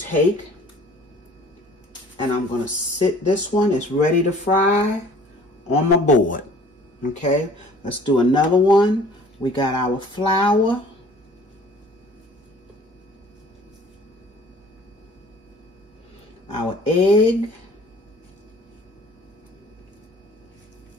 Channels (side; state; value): both; normal; correlation 0.51